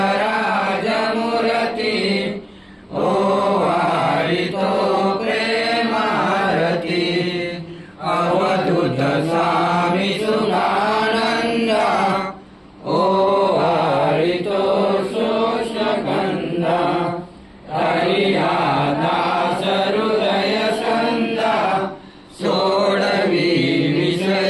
राज मूर्ति ओवाळितो प्रेमारती। अवधूत स्वामी सुधानंद ओवाळितो शोषगंध। हरिया दास हृदय छंद सोडवी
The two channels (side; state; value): both; identical; correlation 1.00